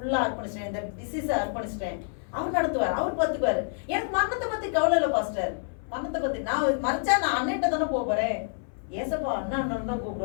அர்ப்பணிச்சிட்டேன், இந்த டிசீஸை அர்ப்பணிச்சிட்டேன். அவர் நடத்துவார், அவர் பார்த்துக்குவார். எனக்கு மரணத்தை பற்றி கவலை இல்லை பாஸ்டர். மரணத்தை பற்றி நான் மறைச்சா நான் அண்ணன்ட்ட தானே போகிறேன். ஏசப்பா அண்ணா அண்ணன் தான்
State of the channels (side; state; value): right; silent; 58 dB below the other